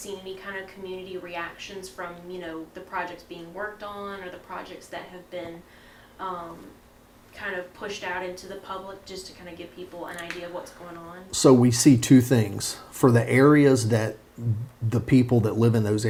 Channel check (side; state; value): both; identical; correlation 1.00